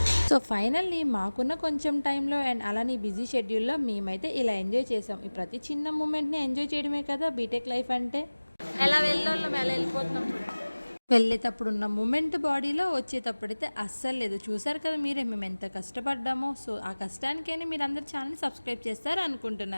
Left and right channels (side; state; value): both; inverted; correlation -1.00